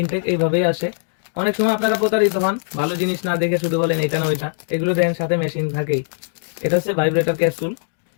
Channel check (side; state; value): right; silent; digital silence